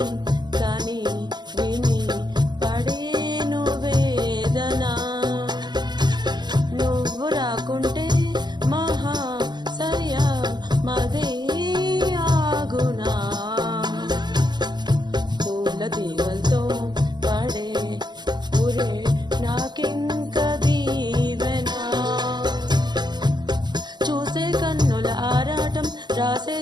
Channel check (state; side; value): late; left; 0.21 ms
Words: కని విని పడేను వేదన నువ్వు రాకుంటే మహా సయ్యా మదే ఆగునా పూల తీగలతో పడే పురే నాకింక దీవెనా చూసే కన్నుల ఆరాటం రాసే